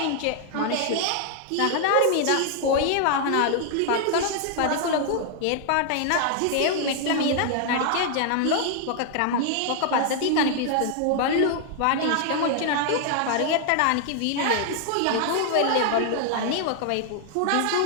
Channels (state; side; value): different; both; correlation 0.00